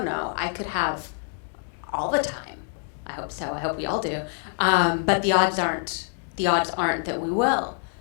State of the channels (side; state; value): right; silent; 56 dB below the other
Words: know. I could have all the time. I hope so. I hope we all do. But the odds aren't that we will.